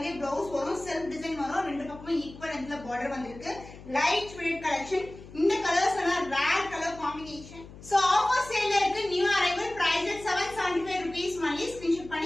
பிளவுஸ் வரும், செல்ஃப் டிசைன் வரும். ரெண்டு பக்கமும் ஈக்குவல் லென்த்ல பார்டர் வந்திருக்கு. Light weight collection. இந்த கலர்ஸ் எல்லாம் rare colour combination. So offer சேல்ல இருக்கு. New arrival, price 775 rupees only. Screenshot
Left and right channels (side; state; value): left; noise; hum, 17 dB below the sound